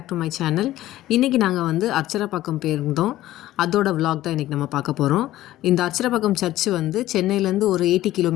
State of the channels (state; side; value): quieter; right; 14.9 dB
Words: to my channel. இன்றைக்கி நாங்கள் வந்து அர்ச்சரப்பாக்கம் போயிருந்தோம். அதோட விலாக் தான் இன்றைக்கி நம்ம பார்க்க போகிறோம். இந்த அர்ச்சரப்பாக்கம் சர்ச்சு வந்து சென்னையிலேருந்து ஒரு 80